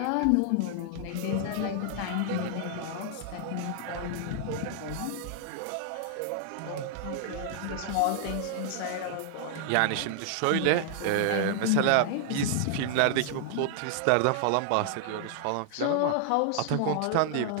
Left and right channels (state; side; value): different; both; correlation -0.01